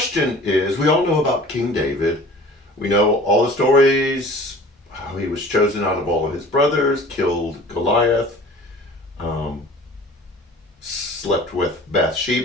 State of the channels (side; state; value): both; normal; correlation 0.45